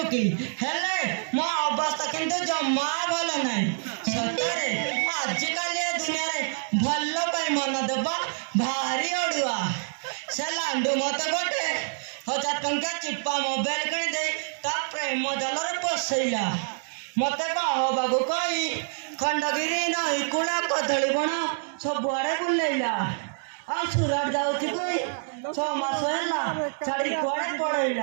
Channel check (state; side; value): silent; left; 60 dB below the other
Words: हेले मो अवस्था किंतु जम्मा भल नाई सतरे आजिकल ए दुनिया रे भल्लो पाई मन देबा भारी अडुआ से लांडू मते गोटे 1000 टंका चिप्पा मोबाइल किनी दे ता प्रेम जलरे पसैला मते कहो बाबू कई खंडगिरी नई कुला कदली बण सब आड़े बुलैला आ सुरट जाउछि कोई 6 मास हैला छाड़ी कोड़े